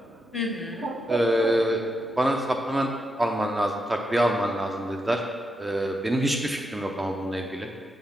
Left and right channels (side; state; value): both; normal; correlation 0.83